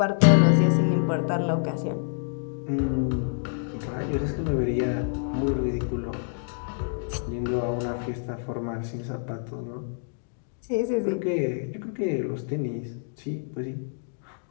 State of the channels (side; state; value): right; silent; digital silence